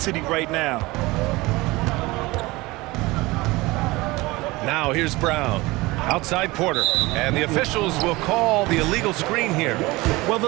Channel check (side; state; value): left; quieter; 21.5 dB